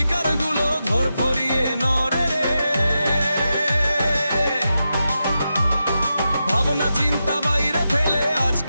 গুলো ধর ফরিয়ে নড়ে রে, ভাবনা চিন্তা বাইরে ফেলে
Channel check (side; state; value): both; inverted; correlation -0.89